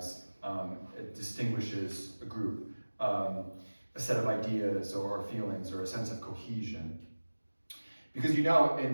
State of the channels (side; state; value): both; inverted; correlation -1.00